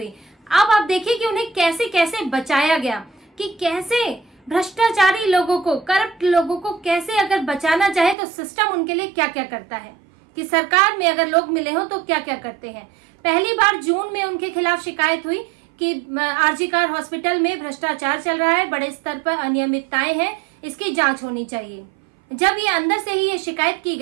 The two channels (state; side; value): drops out; left; at 8.2 s